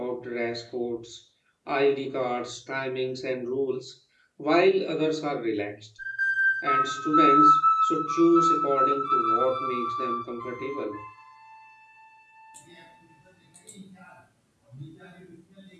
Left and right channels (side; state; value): both; identical; correlation 1.00